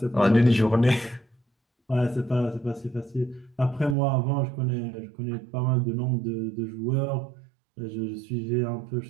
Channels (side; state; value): left; drops out; at 4.0 s